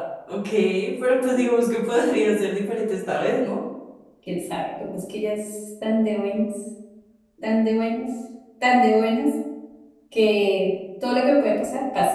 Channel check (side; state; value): both; identical; correlation 1.00